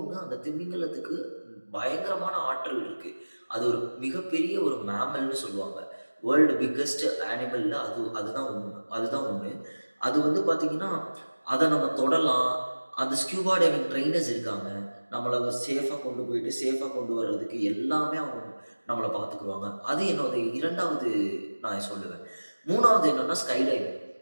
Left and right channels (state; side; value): inverted; both; correlation -1.00